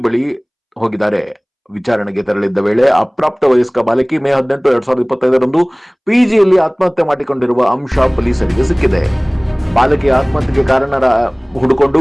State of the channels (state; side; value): identical; both; correlation 1.00